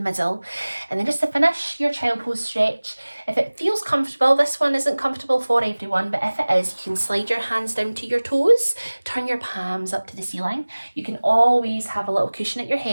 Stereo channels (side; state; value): both; inverted; correlation -1.00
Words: middle, and then just to finish your child pose stretch, if it feels comfortable, this one isn't comfortable for everyone, but if it is, you can slide your hands down to your toes, turn your palms up to the ceiling. You can always have a little cushion at your